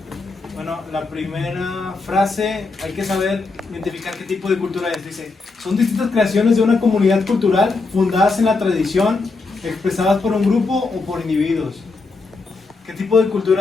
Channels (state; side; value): quieter; right; 3.9 dB